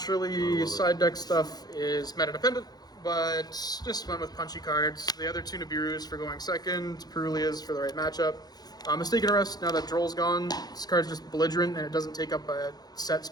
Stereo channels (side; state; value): right; late; 0.19 ms